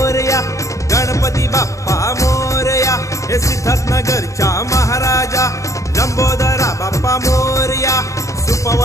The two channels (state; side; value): late; right; 0.15 ms